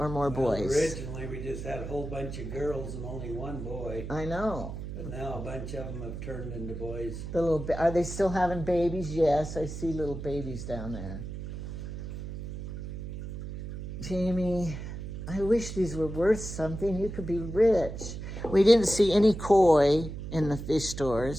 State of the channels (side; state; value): right; noise; hum, 8 dB below the sound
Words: more boys? Originally, we just had a whole bunch of girls and only one boy. I know. But now a bunch of them have turned into boys. Are they still having babies? Yes, I see little babies down there. Jamie, I wish these were worth something. You could be rich. We didn't see any koi in the fish